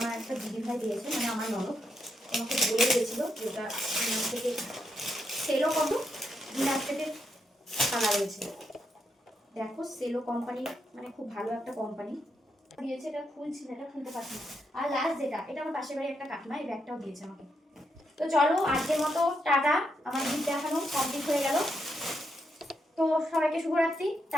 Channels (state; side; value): normal; both; correlation 0.81